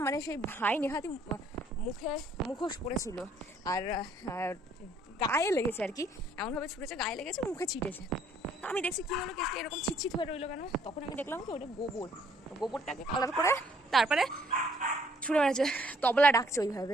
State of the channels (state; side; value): normal; both; correlation 0.64